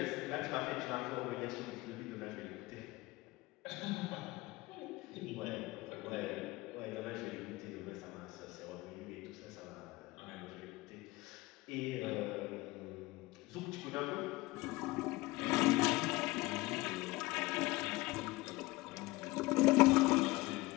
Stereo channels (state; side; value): quieter; right; 21.0 dB